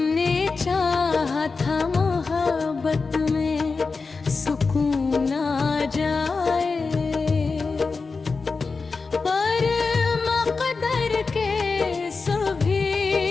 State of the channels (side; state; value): right; quieter; 4.4 dB